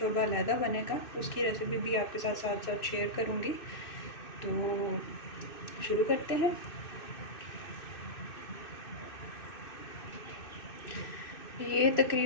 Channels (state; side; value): late; right; 2.6 ms